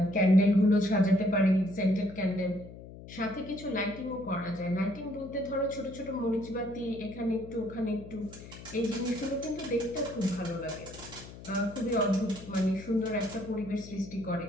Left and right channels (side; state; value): left; noise; hum, 15 dB below the sound